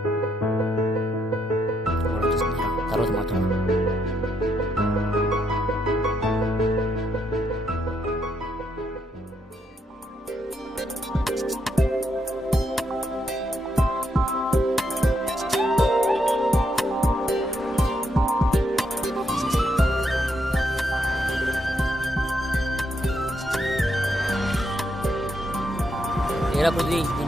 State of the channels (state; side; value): normal; both; correlation 0.78